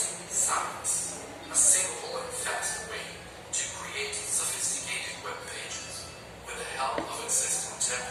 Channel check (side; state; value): both; identical; correlation 1.00